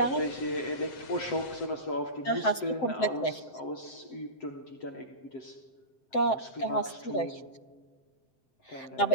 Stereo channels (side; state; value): right; late; 7.7 ms